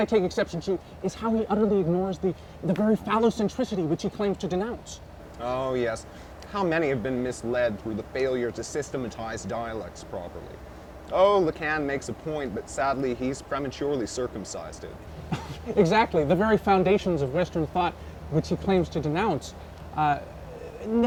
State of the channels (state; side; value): identical; both; correlation 1.00